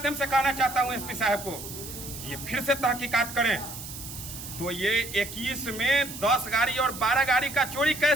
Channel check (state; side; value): noise; right; hiss, 11 dB below the sound